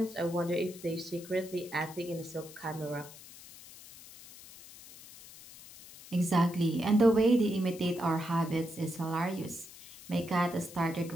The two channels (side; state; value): left; noise; hiss, 18 dB below the sound